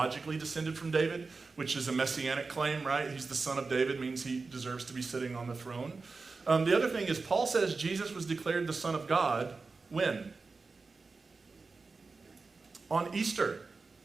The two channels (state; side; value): quieter; left; 4.1 dB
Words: descended from David, which is a messianic claim, right? He's the son of David, means he deserves to be sitting on the throne. The other thing is Paul says Jesus was declared the Son of God when? On Easter.